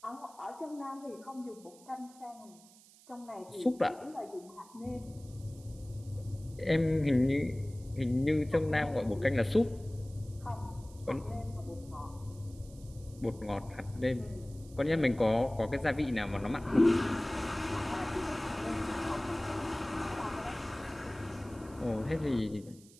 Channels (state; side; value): noise; right; hiss, 24 dB below the sound